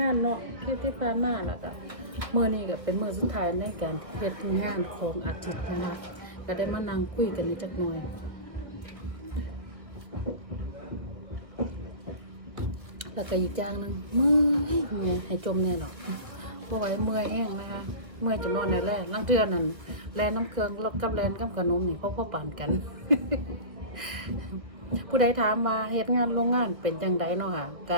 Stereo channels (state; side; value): late; left; 1.5 ms